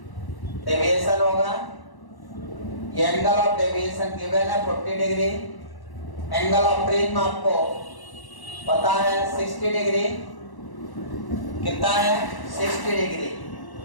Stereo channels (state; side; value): late; right; 1.1 ms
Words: डेविएशन होगा, ये एंगल ऑफ डेविएशन गिवन है 40 डिग्री। एंगल ऑफ प्रिज्म आपको पता है 60 डिग्री। कितना है? 60 डिग्री।